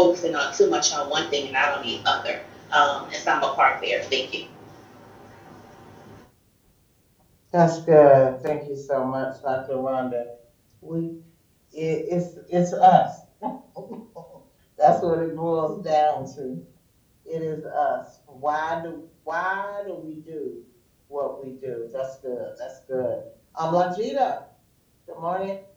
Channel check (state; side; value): identical; both; correlation 1.00